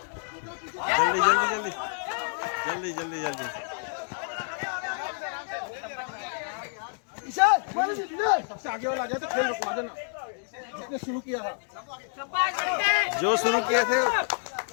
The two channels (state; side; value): silent; right; 59 dB below the other